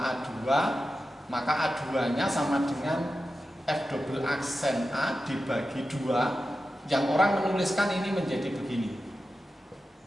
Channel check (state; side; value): normal; both; correlation 0.92